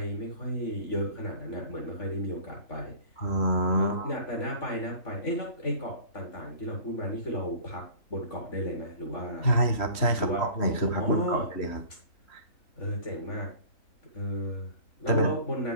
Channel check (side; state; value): right; late; 3.1 ms